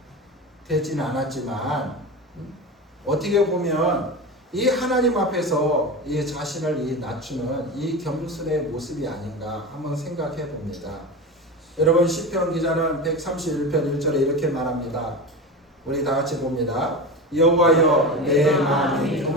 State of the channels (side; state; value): both; normal; correlation 0.25